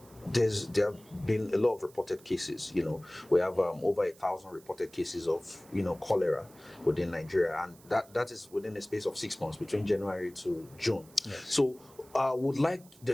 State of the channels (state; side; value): noise; right; hiss, 25 dB below the sound